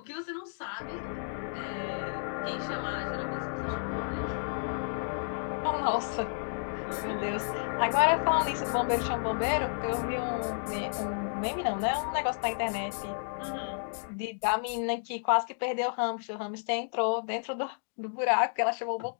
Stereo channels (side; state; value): right; silent; digital silence